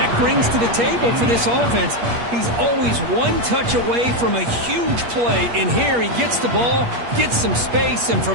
brings to the table for this offense. He's always one touch away from a huge play. And here he gets the ball, gets some space, and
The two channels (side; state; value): left; late; 8.5 ms